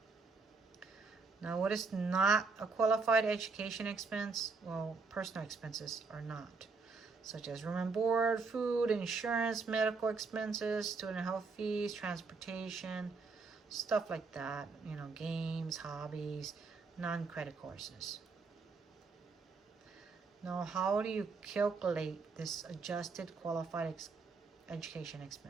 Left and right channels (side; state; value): left; quieter; 4.4 dB